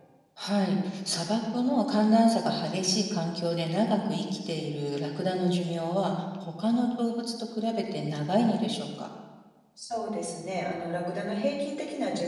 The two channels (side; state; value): both; identical; correlation 1.00